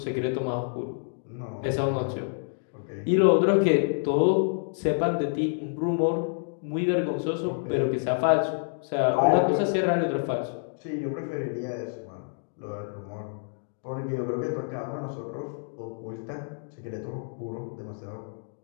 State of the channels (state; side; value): silent; right; digital silence